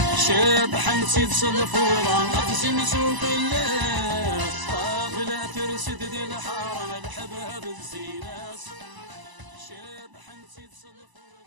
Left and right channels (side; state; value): left; late; 1.0 ms